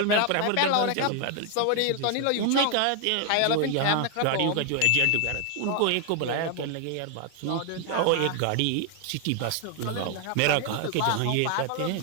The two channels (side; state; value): both; different; correlation 0.00